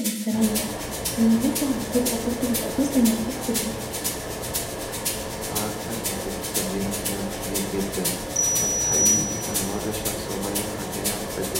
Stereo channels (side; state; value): both; identical; correlation 1.00